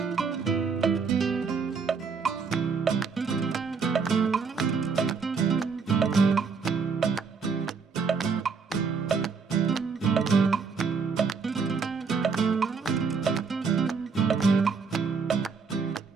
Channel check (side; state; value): left; quieter; 5.3 dB